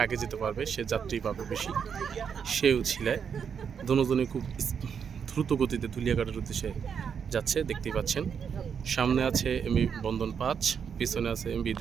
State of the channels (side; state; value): left; quieter; 7.1 dB